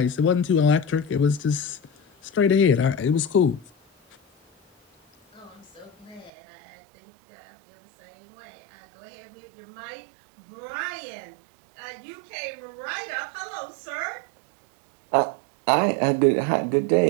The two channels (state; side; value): drops out; left; at 6.3 s